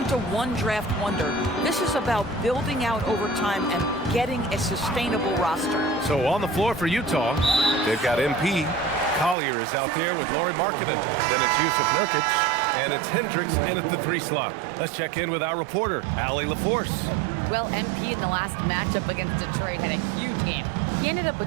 a one-draft wonder. This is about building out over time and getting a sustainable roster. So on the floor for Utah, they've got MP. Collier is out there with Lauri Markkanen. Then it's Yusuf Nurkic, and it's Hendricks in at the 3 slot. Let's check in with our reporter, Allie LaForce. Well, MP in the last matchup against Detroit had a huge game. He ended up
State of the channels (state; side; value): drops out; left; at 9.3 s